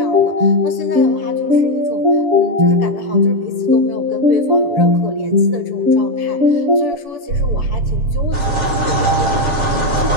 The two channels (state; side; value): late; left; 7.4 ms